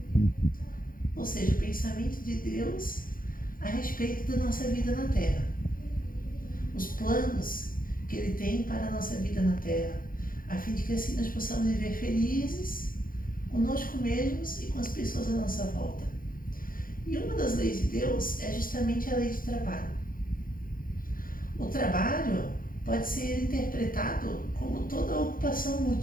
Ou seja, o pensamento de Deus a respeito da nossa vida na Terra. Os planos que Ele tem para a nossa vida na Terra, a fim de que assim nós possamos viver felizes conosco mesmos e com as pessoas à nossa volta. E uma das leis de Deus é justamente a lei de trabalho. O trabalho pode ser interpretado como toda ocupação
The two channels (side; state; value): right; late; 0.41 ms